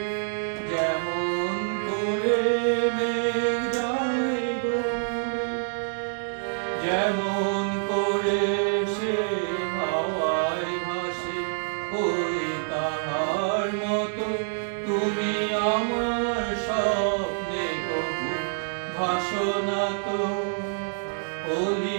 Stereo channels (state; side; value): silent; left; 60 dB below the other